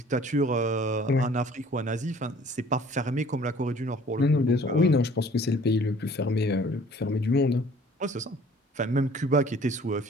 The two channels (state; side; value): normal; both; correlation 0.53